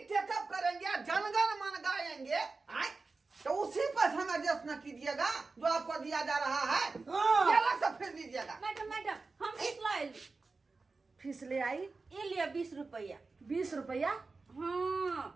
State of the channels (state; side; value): quieter; left; 3.9 dB